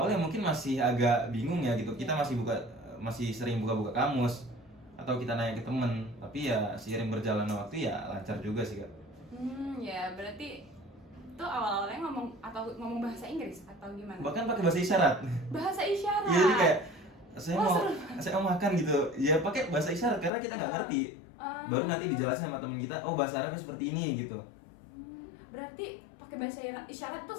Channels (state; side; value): drops out; right; at 20.3 s